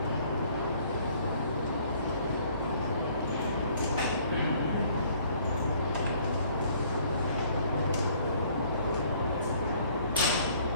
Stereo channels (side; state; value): both; inverted; correlation -0.59